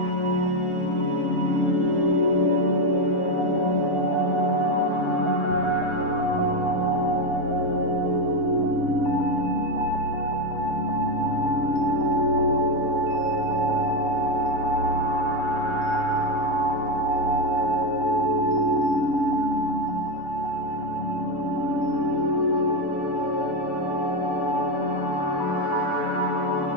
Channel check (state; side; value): late; right; 6.8 ms